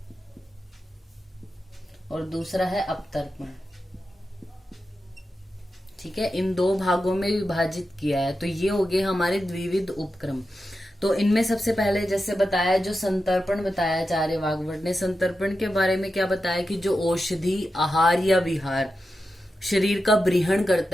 और दूसरा है अपतर्पण। ठीक है, इन 2 भागों में विभाजित किया है। तो ये हो गए हमारे द्विविध उपक्रम। तो इनमें सबसे पहले जैसे बताया, जो संतर्पण बताया आचार्य वाग्भट ने, संतर्पण के बारे में क्या बताया कि जो औषधि आहार या विहार शरीर का ब्रीहण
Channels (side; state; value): both; normal; correlation 0.90